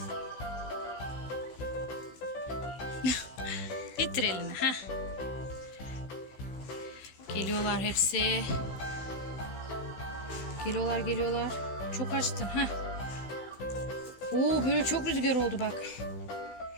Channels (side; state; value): right; late; 16 ms